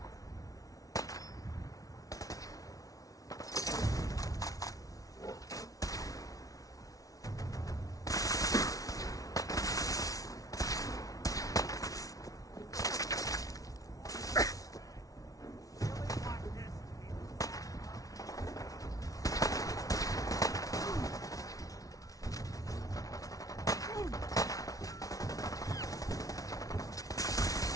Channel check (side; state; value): right; late; 0.17 ms